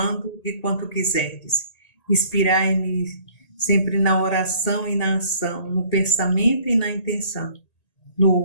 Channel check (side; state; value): right; late; 1.8 ms